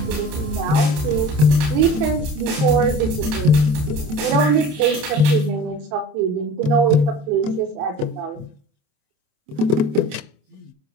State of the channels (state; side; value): late; left; 27 ms